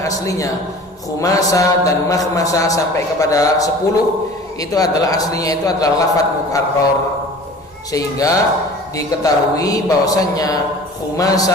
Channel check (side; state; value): both; normal; correlation 0.43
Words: khumasa dan makhmasa sampai kepada 10 itu adalah aslinya itu adalah lafaz mukarrar, sehingga diketahui bahwasannya